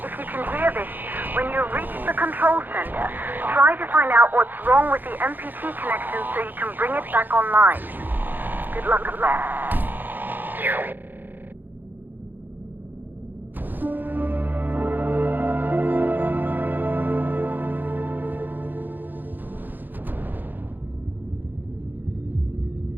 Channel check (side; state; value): left; late; 0.088 ms